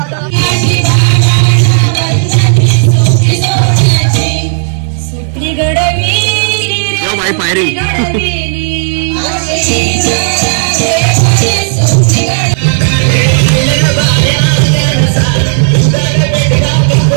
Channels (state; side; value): silent; left; digital silence